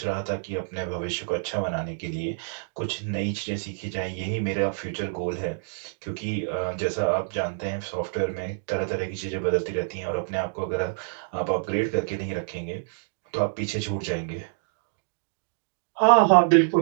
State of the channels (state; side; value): silent; left; digital silence